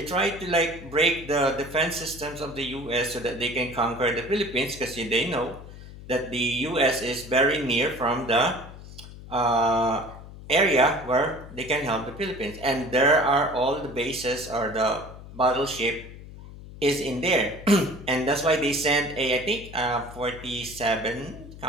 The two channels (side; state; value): left; noise; hum, 15 dB below the sound